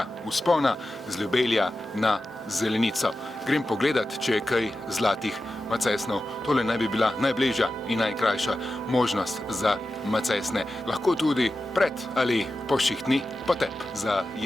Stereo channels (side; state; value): both; normal; correlation 0.92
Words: vzpona z Ljubelja na Zelenico. Grem pogledat, če je kaj zlatih macesnov. Tole naj bi bila najbližja in najkrajša možnost za macesne. Lahko tudi pred ali pošihtni potep za